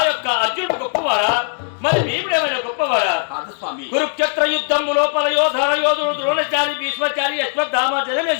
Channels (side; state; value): right; silent; 65 dB below the other